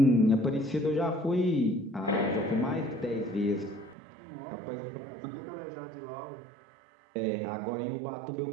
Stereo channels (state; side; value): drops out; left; at 4.0 s